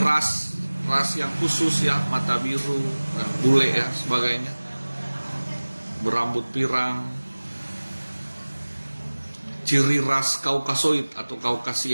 yang khusus, ya, mata biru, bule, ya, sebagainya, berambut pirang, ciri ras Kaukasoid atau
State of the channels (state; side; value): inverted; both; correlation -1.00